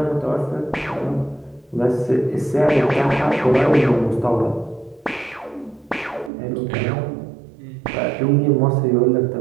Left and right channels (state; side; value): drops out; left; at 6.3 s